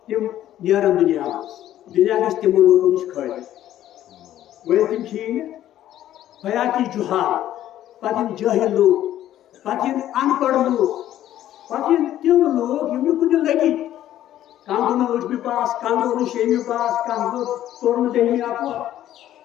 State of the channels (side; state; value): right; quieter; 12.5 dB